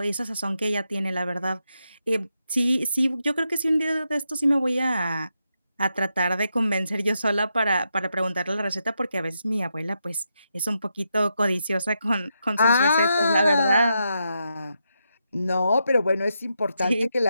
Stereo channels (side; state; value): both; inverted; correlation -0.84